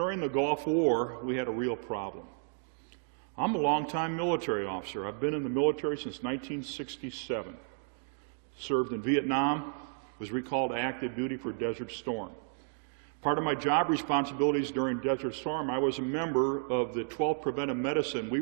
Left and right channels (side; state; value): left; silent; digital silence